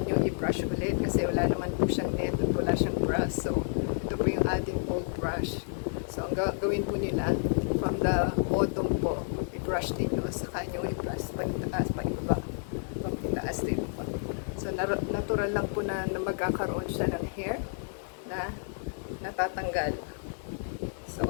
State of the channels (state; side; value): silent; right; 55 dB below the other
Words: i-brush ulit kasi wala naman po siyang net at wala siyang brush. So, ito po yung ating old brush. So, ang gawin po nila, from the bottom po, i-brush ninyo, saka nyo i-brush pag-itaas, pag-ibaba, pag-itaas din po. So, natural lang po na magkakaroon siya ng hair na natatanggal. So,